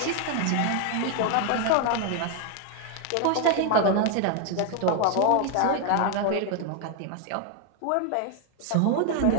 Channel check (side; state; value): both; different; correlation 0.01